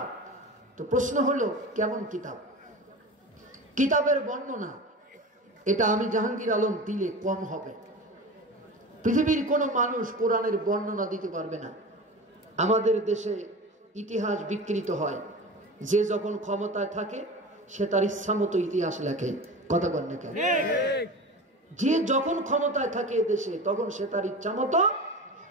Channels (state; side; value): normal; both; correlation 0.31